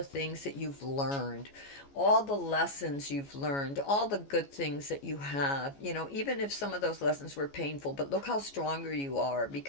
things that you've learned, all the lessons you've learned, all the good things that you have, even if some of those lessons were painful, but look how stronger you are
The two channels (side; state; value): right; late; 14 ms